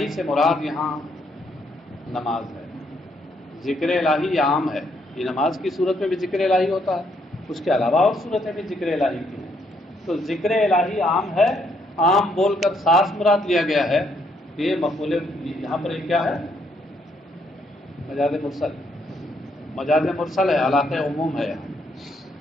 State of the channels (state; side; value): normal; both; correlation 0.72